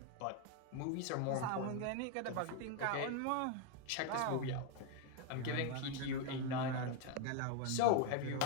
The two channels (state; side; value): different; both; correlation 0.01